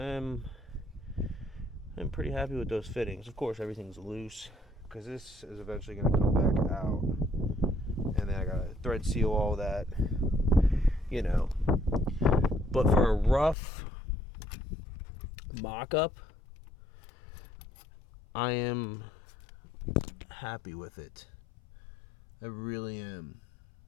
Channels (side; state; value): right; drops out; at 13.6 s